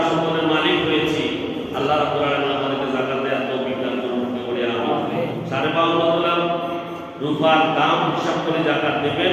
সম্পদের মালিক হয়েছি, আল্লাহ রাব্বুল আলামিন আমাদেরকে জাকাত দেওয়ার তৌফিক দান করুন। আমিন। 52 তোলা রূপার দাম হিসাব করে জাকাত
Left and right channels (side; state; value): both; identical; correlation 1.00